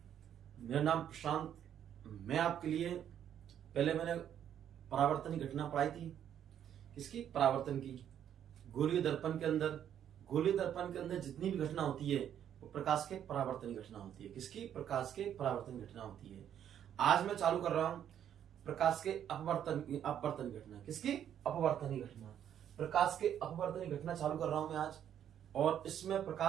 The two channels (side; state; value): left; quieter; 9.8 dB